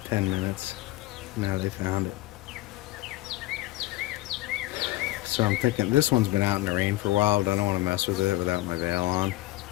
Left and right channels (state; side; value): quieter; right; 17.7 dB